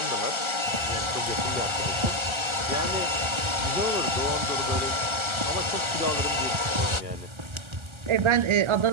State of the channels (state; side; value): late; left; 1.3 ms